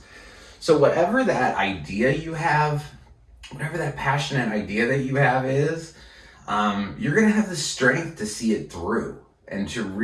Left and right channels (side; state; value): both; identical; correlation 1.00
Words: So whatever that idea you have, whatever that passionate idea that you have is, you're going to have the strength to see it through and to